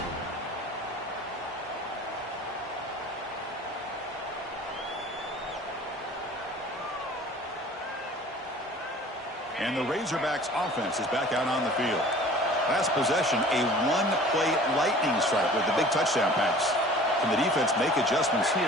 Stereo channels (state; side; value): normal; both; correlation 0.46